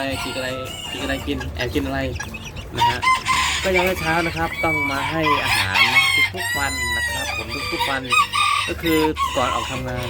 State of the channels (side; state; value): both; identical; correlation 1.00